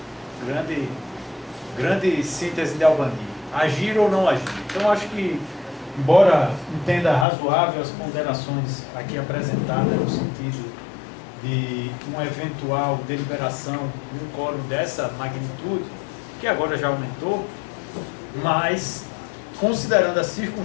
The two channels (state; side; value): drops out; right; at 7.2 s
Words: grande síntese de Albani. Agir ou não agir. Então eu acho que, embora entenda razoável as ponderações aqui apresentadas no sentido de uma eventual deliberação de um quórum dessa magnitude, que agora já aumentou, mas considerando as